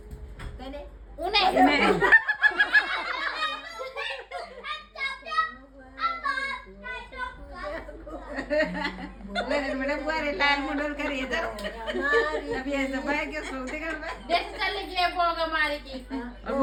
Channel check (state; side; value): identical; both; correlation 1.00